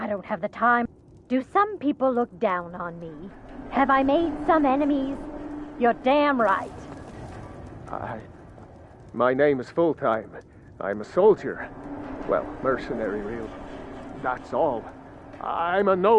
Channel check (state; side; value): identical; both; correlation 1.00